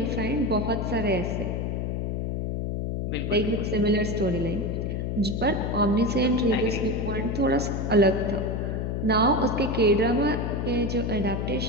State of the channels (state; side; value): noise; left; hum, 2 dB below the sound